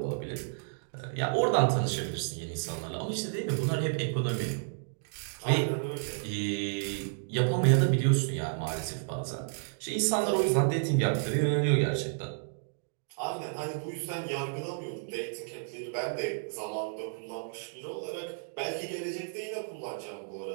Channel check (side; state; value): left; silent; digital silence